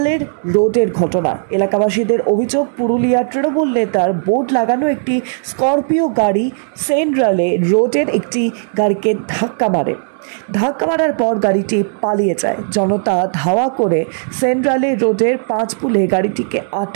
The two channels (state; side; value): silent; left; digital silence